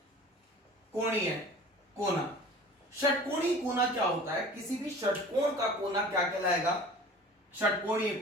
कोना। षटकोणीय कोना क्या होता है? किसी भी षटकोण का कोना क्या कहलाएगा? षटकोणीय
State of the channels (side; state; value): both; normal; correlation 0.43